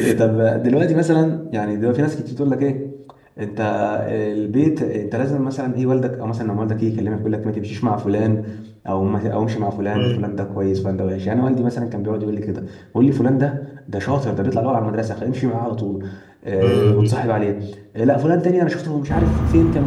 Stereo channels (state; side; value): identical; both; correlation 1.00